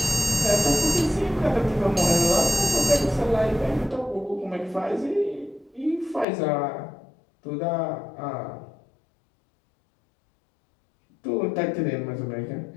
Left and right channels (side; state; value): right; drops out; at 6.2 s